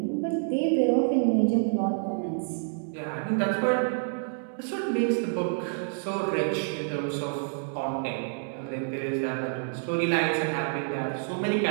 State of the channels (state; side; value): silent; left; 59 dB below the other